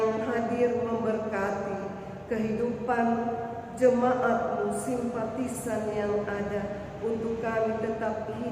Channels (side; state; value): both; identical; correlation 1.00